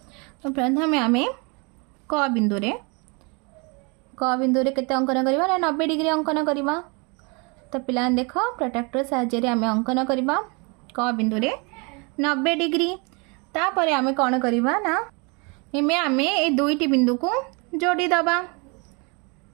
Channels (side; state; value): left; quieter; 31.3 dB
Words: तो प्रथमे आमे क बिंदु रे केते अंकन करिबा ना 90 डिग्री अंकन करिबा। तो पिला देख प्रोट्रैक्टर साहाय्य रे आमे अंकन करिबा क बिंदु रे 90 डिग्री। तापरे आमे कौन करिबा ना एमे आमे ए दुईटी बिंदु को जोड़ी दबा।